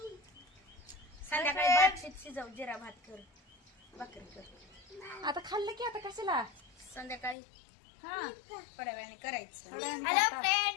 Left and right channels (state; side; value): drops out; right; at 7.4 s